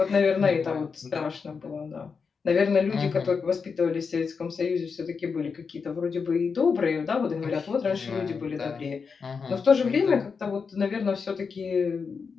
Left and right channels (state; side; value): quieter; right; 5.4 dB